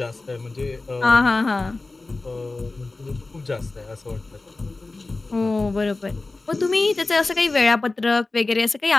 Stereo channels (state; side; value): quieter; right; 3.4 dB